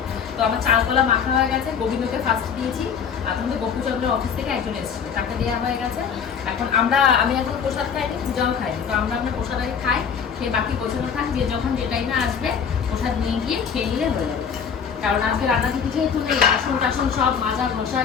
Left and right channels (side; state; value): right; quieter; 7.0 dB